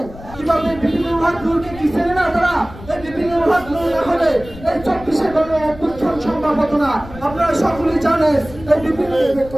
কিভাবে বিভিন্ন বিভাগগুলোকে কি চেনে না তারা এই বিভিন্ন বিভাগগুলো না হলে এই 24-এ কোনো অভ্যুত্থান সম্ভব হতো না। আপনারা সকলেই জানেন এই বিভিন্ন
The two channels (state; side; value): noise; left; rumble, 16 dB below the sound